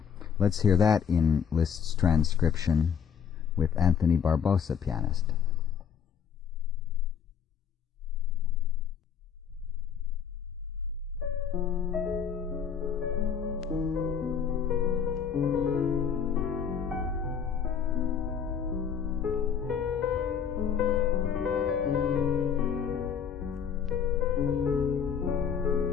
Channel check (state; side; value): quieter; right; 7.3 dB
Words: Let's hear that in Liszt's transcription with Anthony Barbosa, pianist.